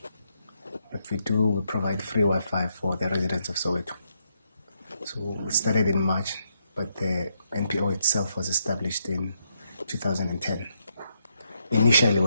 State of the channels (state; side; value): inverted; both; correlation -0.78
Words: What we do, we provide free Wi-Fi for the residents of Soweto. So we started in March, but the NPO itself was established in 2010. Initially,